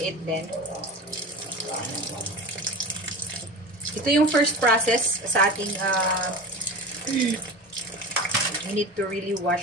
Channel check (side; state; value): both; normal; correlation 0.30